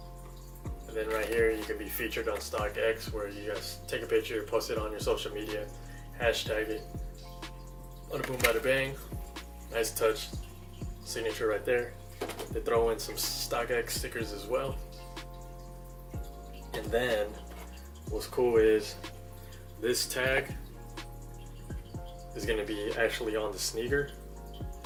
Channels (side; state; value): both; identical; correlation 1.00